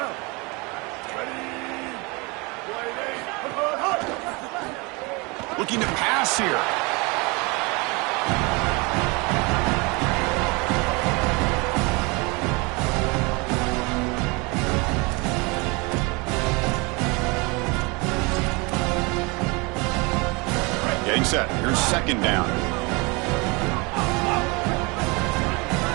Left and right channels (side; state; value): left; quieter; 27.7 dB